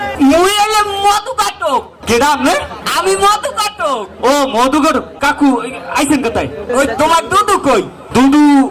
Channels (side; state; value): both; identical; correlation 1.00